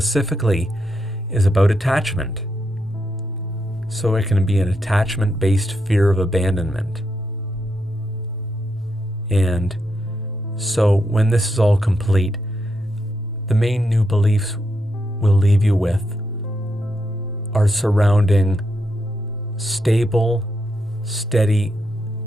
is about attachment. So it can be an attachment-based fear of abandonment. And so when this is all complete, the main new beliefs we'll leave you with are surrounding stable, steady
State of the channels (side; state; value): both; normal; correlation 0.82